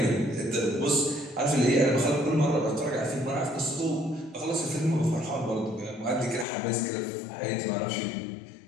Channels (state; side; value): drops out; right; at 6.5 s